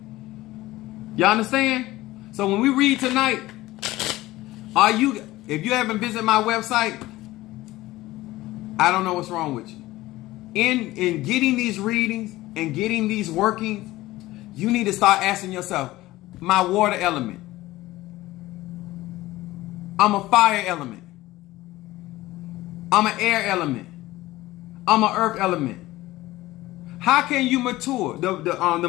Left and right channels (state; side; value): quieter; right; 17.6 dB